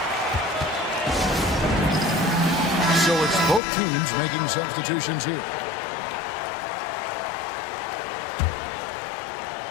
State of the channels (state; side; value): drops out; right; at 3.6 s